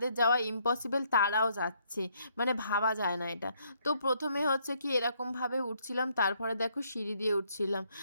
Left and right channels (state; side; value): inverted; both; correlation -0.70